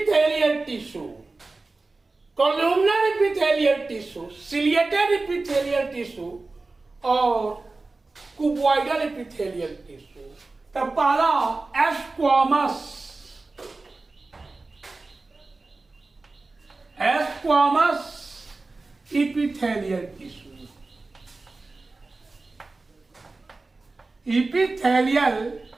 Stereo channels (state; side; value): quieter; left; 3.5 dB